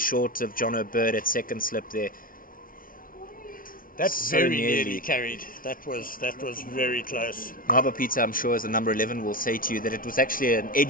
of John O'Bird at second slip there. That's So very nearly. nearly carried. That was very close. Ngaba Peter, I'm sure, as a number 11, will say to you that it was actually an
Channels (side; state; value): right; late; 0.41 ms